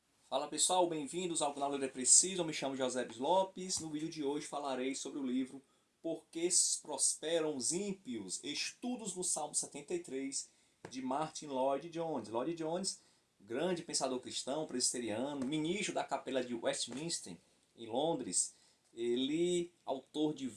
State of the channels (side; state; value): both; identical; correlation 1.00